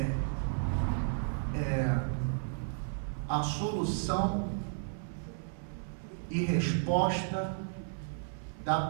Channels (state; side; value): silent; left; 55 dB below the other